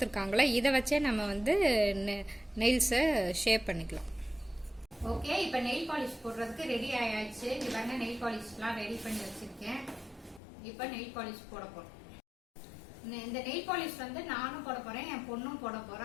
இதை வச்சே நம்ம வந்து நெயில்ஸை ஷேப் பண்ணிக்கலாம். ஓகே, இப்போ நெயில் பாலிஷ் போடுறதுக்கு ரெடி ஆயாச்சு. இங்க பாருங்க நெயில் பாலிஷ்லாம் ரெடி பண்ணி வச்சிருக்கேன். இப்போ நெயில் பாலிஷ் போட போறோம். இந்த நெயில் பாலிஷ் வந்து நானும் போட போறேன், என் பொண்ணும் போட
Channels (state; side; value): drops out; right; at 10.4 s